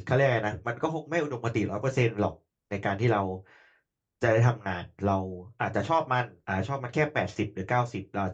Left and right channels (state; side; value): identical; both; correlation 1.00